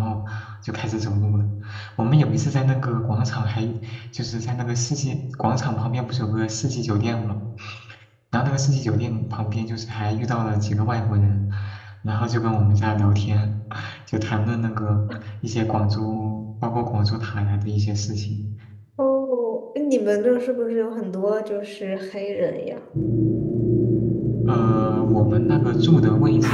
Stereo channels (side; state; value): both; identical; correlation 1.00